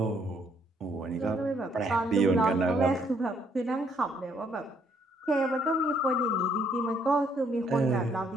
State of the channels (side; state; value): both; normal; correlation 0.68